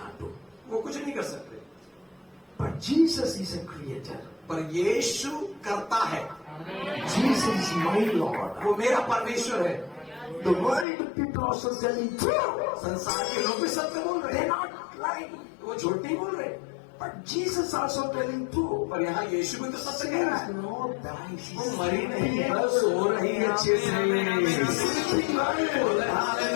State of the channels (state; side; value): drops out; right; at 10.9 s